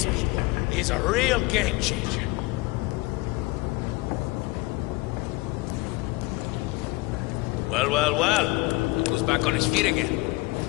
is a real game changer. Well. Look who's back on his feet again.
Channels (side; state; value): right; quieter; 23.0 dB